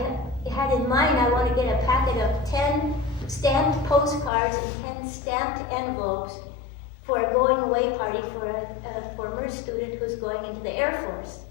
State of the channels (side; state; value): right; drops out; at 4.3 s